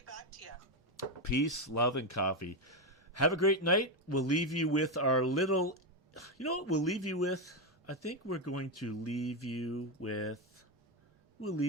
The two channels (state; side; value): normal; both; correlation 0.08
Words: back to you. Peace, love, and coffee. Have a great night. We'll leave you with our little... You know what we'll leave you with? I think we're going to leave you with... We'll